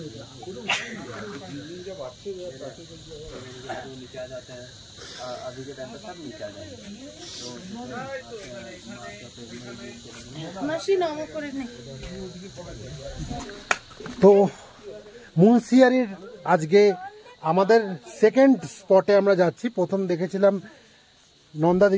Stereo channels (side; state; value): both; identical; correlation 1.00